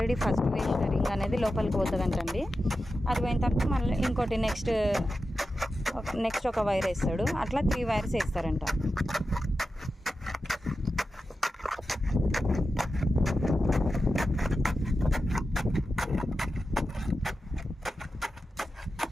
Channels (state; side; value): normal; both; correlation 0.91